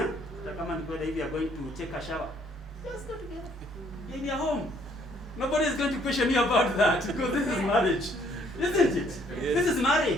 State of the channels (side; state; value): both; normal; correlation 0.64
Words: If you are going to take a shower, just go together in your home. Nobody is going to question you about that, because this is marriage, isn't it? Yes. This is